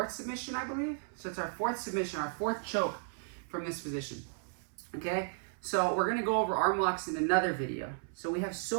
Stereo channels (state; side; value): silent; left; 55 dB below the other